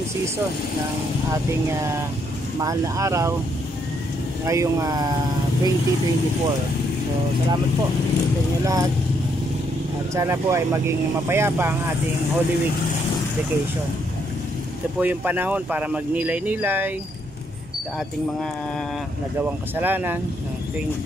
season ng ating mahal na araw ngayong 2024. So salamat po sa inyo lahat. At sana po ay maging mapayapa ang ating Holy Week vacation. Ito po yung panahon para magnilay-nilay sa ating mga nagawang kasalanan ng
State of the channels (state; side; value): normal; both; correlation 0.73